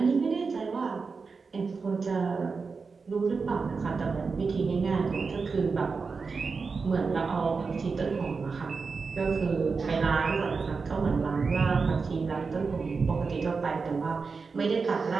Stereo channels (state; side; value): quieter; left; 4.8 dB